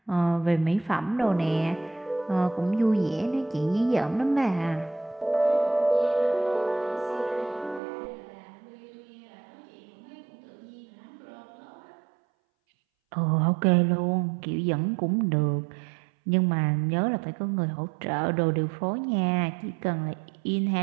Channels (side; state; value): left; drops out; at 7.8 s